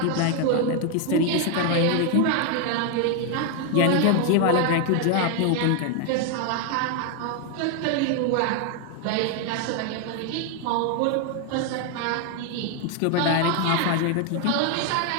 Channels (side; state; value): both; different; correlation 0.01